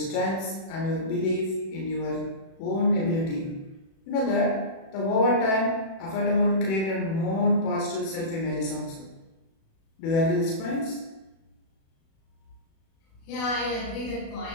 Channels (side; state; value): right; late; 36 ms